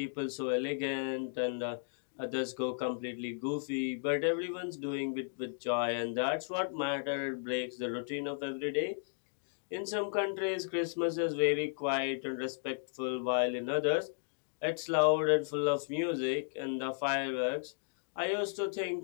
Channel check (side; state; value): right; silent; digital silence